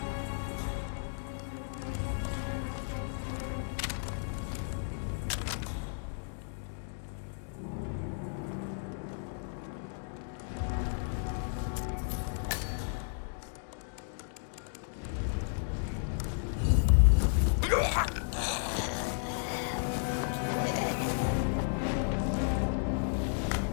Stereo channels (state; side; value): silent; right; digital silence